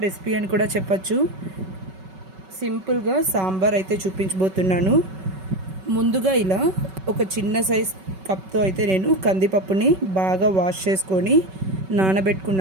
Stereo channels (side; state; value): left; late; 5.3 ms